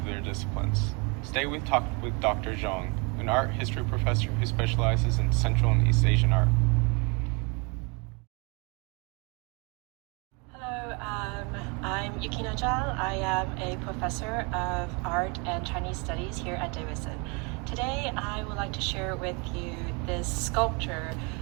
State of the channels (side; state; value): left; quieter; 31.5 dB